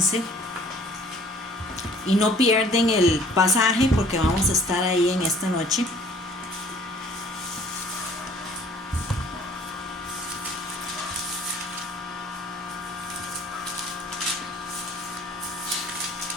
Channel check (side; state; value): both; normal; correlation 0.54